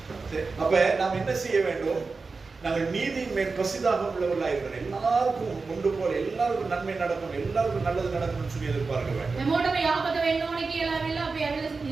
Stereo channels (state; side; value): quieter; left; 4.2 dB